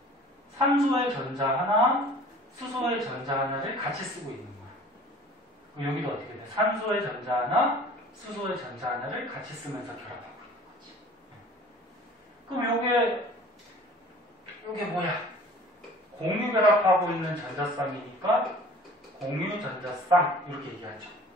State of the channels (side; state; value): both; normal; correlation 0.46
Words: 산소의 전자 하나, 수소의 전자 하나를 같이 쓰고 있는 거야. 그럼 여기도 어떻게 돼? 산소의 전자 하나, 수소의 전자 하나를 같이 쓰면서 결합하고 있는 거지. 그럼 요게 뭐야? 공유 결합하고 있는 전자쌍이니까 공유 전자쌍 이렇게 얘기하죠.